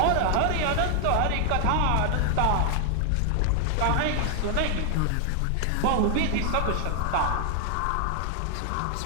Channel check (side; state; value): both; different; correlation 0.00